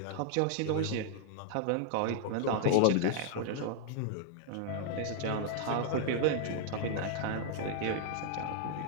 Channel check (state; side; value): different; both; correlation -0.01